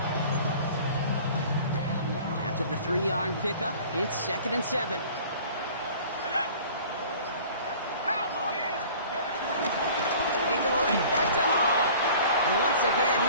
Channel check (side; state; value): both; inverted; correlation -0.46